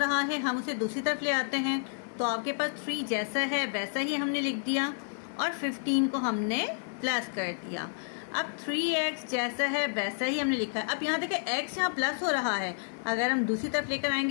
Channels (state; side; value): silent; right; digital silence